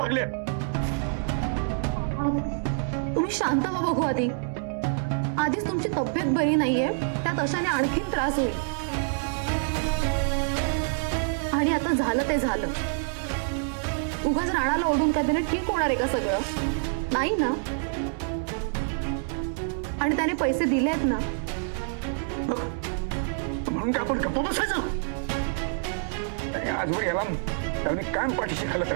तुम्ही शांत व्हा बघू. आधीच तुमची तब्येत बरी नाहीये, त्यात अशाने आणखीन त्रास होईल. आणि आता झालं ते झालं. उगाच राणाला ओढून काय त्याने ठीक होणार आहे का सगळं? नाही ना. आणि त्याने पैसे दिलेत ना. म्हणून का आपण गप्प बसायचं? आणि आजवर याला मी कायम पाठीशी खालत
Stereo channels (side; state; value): left; silent; 60 dB below the other